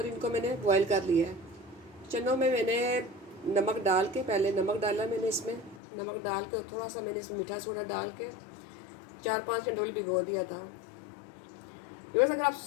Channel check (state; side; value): drops out; right; at 5.8 s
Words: इनको मैंने बॉयल कर लिया है। चनों में मैंने नमक डाल के, पहले नमक डाला मैंने इसमें, नमक डाल के और थोड़ा सा मैंने इसमें मीठा सोडा डाल के 4-5 घंटे भिगो दिया था। बस अगर आप